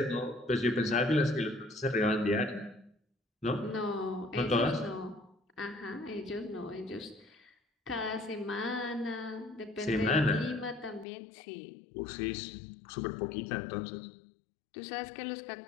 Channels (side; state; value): right; drops out; at 11.1 s